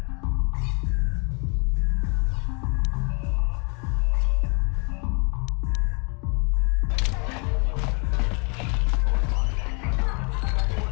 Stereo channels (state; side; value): quieter; right; 35.3 dB